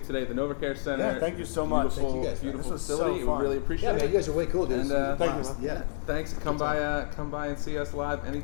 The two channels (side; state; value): right; silent; digital silence